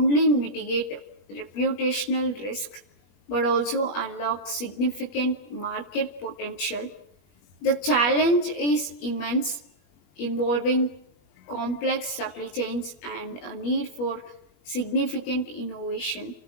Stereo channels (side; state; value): right; late; 20 ms